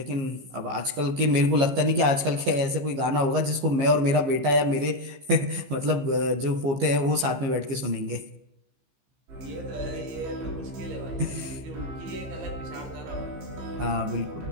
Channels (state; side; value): late; left; 15 ms